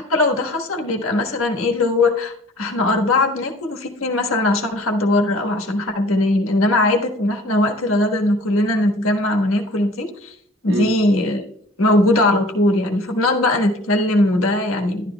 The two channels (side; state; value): both; normal; correlation 0.50